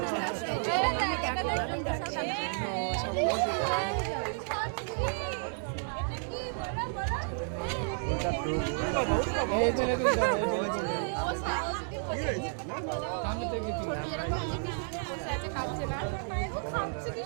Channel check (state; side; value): silent; left; 57 dB below the other